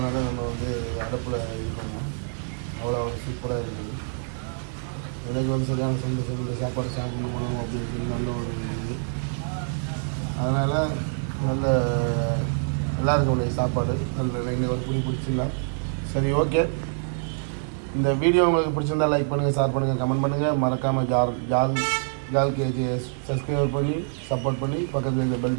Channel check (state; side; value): silent; left; digital silence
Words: நம்ம வந்து அடுப்பில் இது பண்ணுவோம். அவ்வளோ ஒரு சூப்பராக இருக்குது. இன்றைக்கி வந்து சரியான சொல்லி சாப்பாடு சாப்பிட்டு போகணும் அப்படின்றது நல்ல ஒரு இது. அதனால் நல்லா இருக்கும் இன்றைக்கி சாப்பாடு. நல்ல இன்னைக்கு ஒரு புடி பிடிச்சிடலாம். சரி, ஓகே. இந்த வீடியோ உங்களுக்கு பிடிச்சிருந்தால் லைக் பண்ணுங்கள், ஷேர் பண்ணுங்கள், கமெண்ட் பண்ணுங்கள். மறக்காமல் ஜால் கேஜி சப்ஸ்கிரைப் பண்ணி சப்போர்ட் பண்ணி பக்கத்தில் இந்த